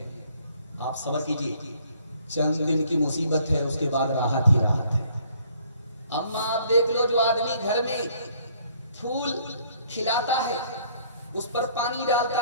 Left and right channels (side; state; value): both; inverted; correlation -0.62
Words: آپ صبر کیجیے, چند دن کی مصیبت ہے, اس کے بعد راحت ہی راحت ہے. اماں آپ دیکھ لو, جو آدمی گھر میں پھول کھلاتا ہے, اس پر پانی